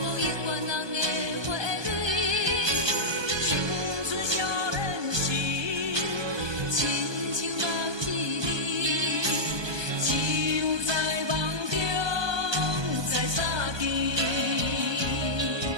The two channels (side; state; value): left; late; 1.2 ms